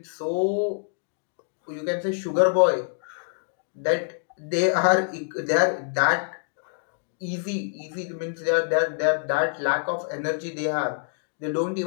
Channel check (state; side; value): silent; right; digital silence